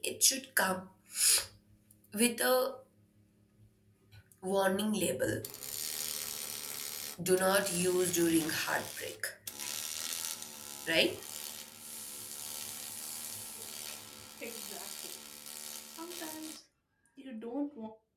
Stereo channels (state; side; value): identical; both; correlation 1.00